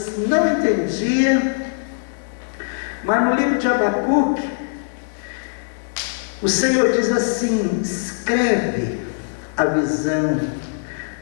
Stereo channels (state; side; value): silent; right; digital silence